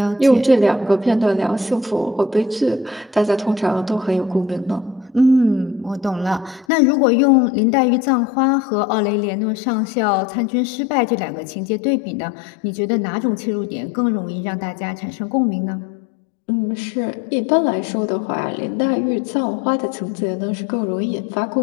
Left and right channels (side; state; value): right; drops out; at 6.7 s